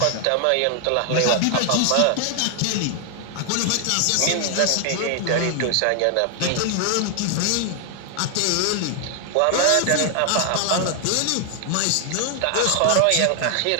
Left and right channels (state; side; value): different; both; correlation 0.00